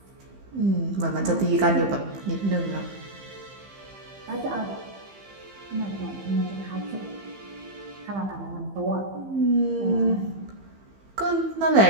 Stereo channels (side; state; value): left; late; 15 ms